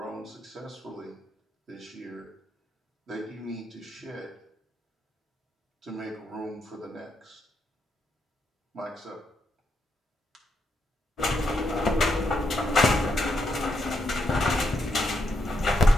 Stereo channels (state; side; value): normal; both; correlation 0.80